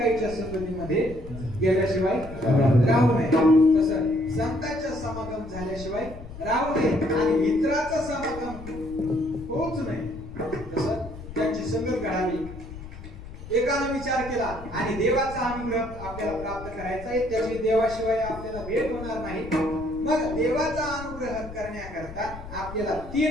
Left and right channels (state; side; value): noise; left; rumble, 13 dB below the sound